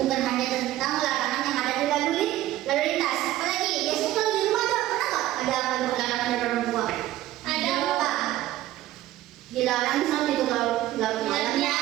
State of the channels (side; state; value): left; quieter; 14.7 dB